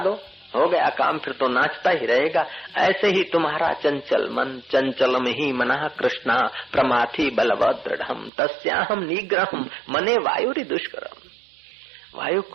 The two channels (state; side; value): drops out; left; at 8.3 s